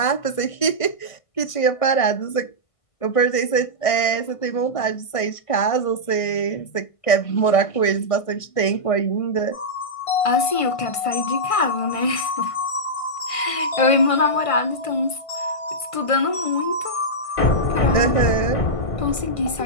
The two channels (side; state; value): right; late; 1.5 ms